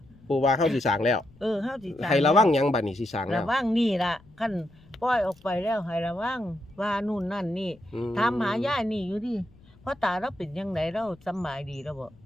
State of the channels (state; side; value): noise; left; rumble, 26 dB below the sound